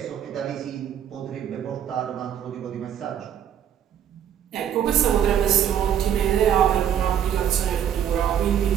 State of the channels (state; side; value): quieter; left; 9.5 dB